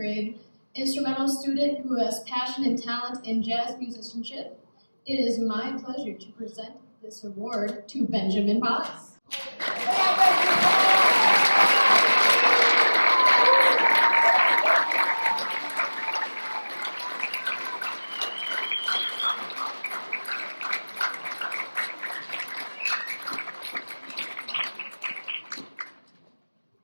instrumental student who has passion and talent in jazz musicianship. It is my pleasure to present this award to Benjamin Potts.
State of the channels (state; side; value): inverted; both; correlation -1.00